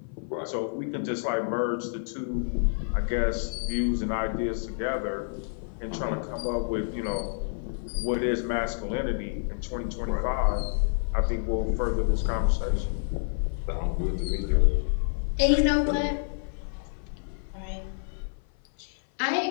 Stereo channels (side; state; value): right; silent; 56 dB below the other